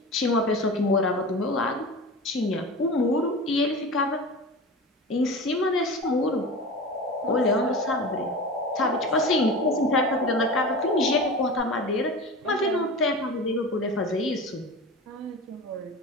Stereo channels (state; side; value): normal; both; correlation 0.31